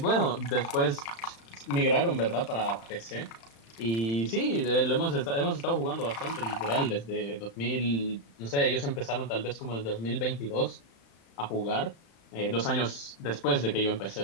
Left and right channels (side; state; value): right; late; 35 ms